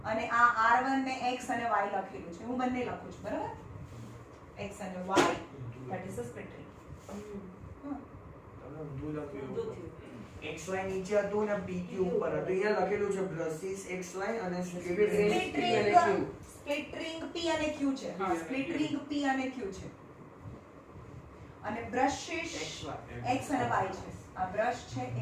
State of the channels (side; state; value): both; identical; correlation 1.00